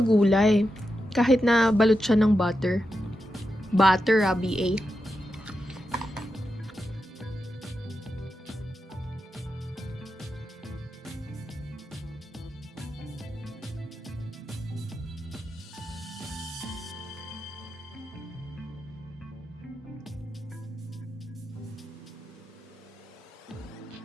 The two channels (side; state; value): both; normal; correlation 0.88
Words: gulay. Kahit na balot siya ng butter. Butter, B.A.